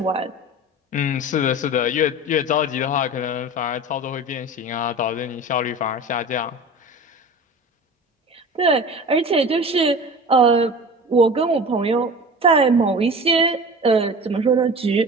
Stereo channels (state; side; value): normal; both; correlation 0.36